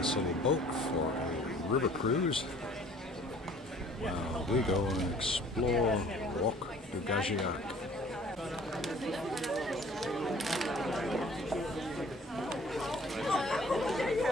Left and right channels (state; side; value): normal; both; correlation 0.52